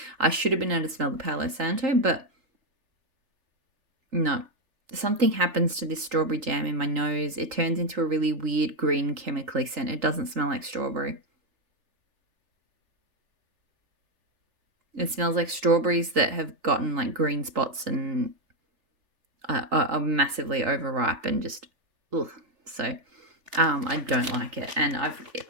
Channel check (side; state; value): left; late; 3.4 ms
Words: I should have been able to smell the Palo Santo, but no. Something happens to this strawberry jam in my nose. It turns into a really weird green chemically scent. It doesn't smell like strawberry. It smells like strawberries that have gotten like green spots and are massively overripe and just, ugh. So I don't like it. And I've